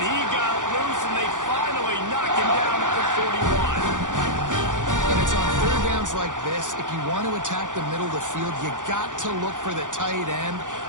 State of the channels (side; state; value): left; late; 0.87 ms